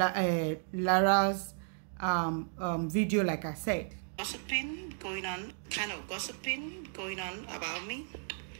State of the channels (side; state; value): left; silent; 55 dB below the other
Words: Lara's video, like I said. Gossiping going on, kind of gossiping going on about me.